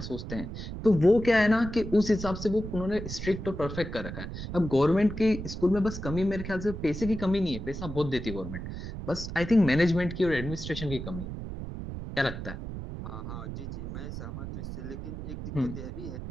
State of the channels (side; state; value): right; noise; rumble, 8 dB below the sound